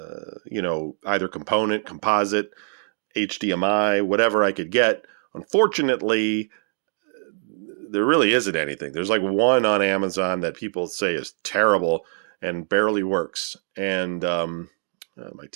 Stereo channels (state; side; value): silent; left; digital silence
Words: you know, either component, composite, HDMI, whatever I could get. Unfortunately, there really isn't anything. There's like one on Amazon that people say is terrible and barely works. And my